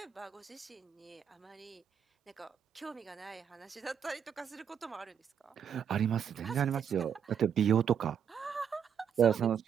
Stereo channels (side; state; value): left; quieter; 8.0 dB